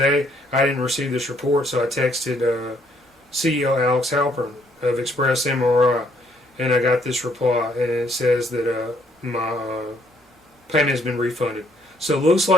I didn't receive this report, so I texted CEO Alex Halpern of Express MRI, and I got this reply, and it says that my payment has been refunded. So it looks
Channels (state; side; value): normal; both; correlation 0.68